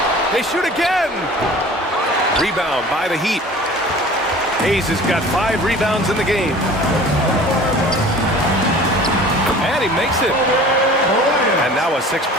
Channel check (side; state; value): both; normal; correlation 0.44